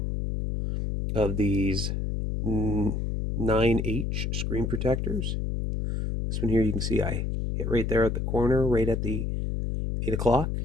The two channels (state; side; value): noise; left; hum, 1 dB below the sound